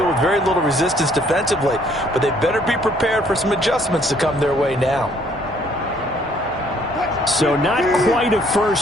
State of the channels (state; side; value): normal; both; correlation 0.63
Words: with very little resistance defensively. But they better be prepared for some adjustments to come their way now. So not quite a